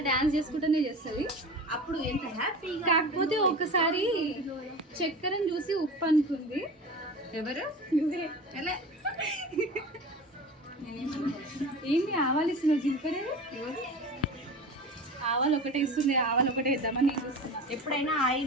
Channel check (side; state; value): both; normal; correlation 0.33